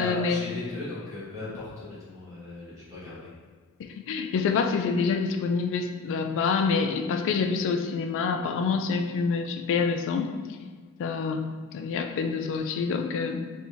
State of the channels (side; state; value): right; quieter; 4.7 dB